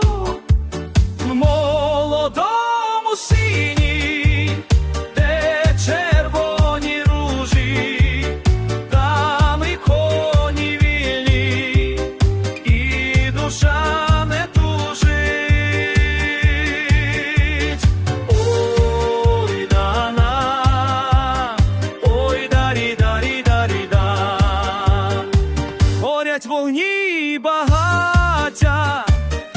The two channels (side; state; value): both; identical; correlation 1.00